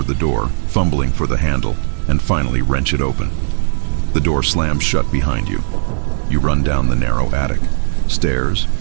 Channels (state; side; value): silent; left; digital silence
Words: the door, fumbling for the handle, and finally wrench it open. The door slams shut behind you. You run down the narrow attic. Stairs,